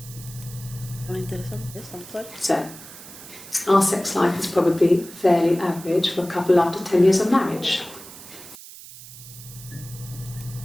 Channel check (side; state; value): right; noise; hiss, 16 dB below the sound